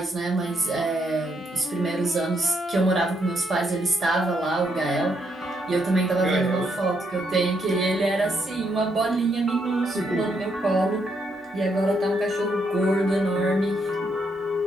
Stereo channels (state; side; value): normal; both; correlation 0.76